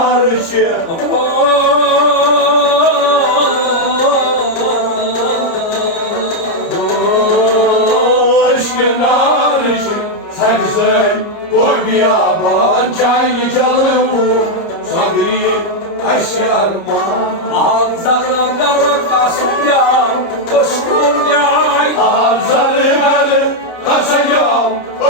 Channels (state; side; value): late; right; 30 ms